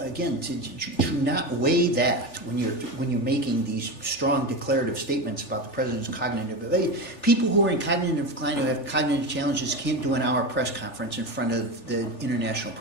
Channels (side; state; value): right; late; 3.4 ms